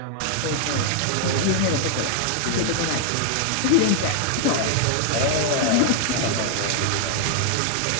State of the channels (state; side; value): different; both; correlation 0.00